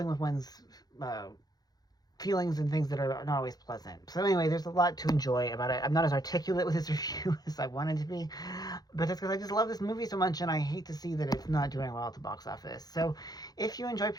with one's feelings and things that are not always pleasant. So anyway, there's a lot to enjoy about it. I'm not as articulate with this review as I wanted to be, but that's because I just love this movie so much, and I hate to see that it's not doing well at the box office. So if you enjoy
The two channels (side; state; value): right; late; 0.19 ms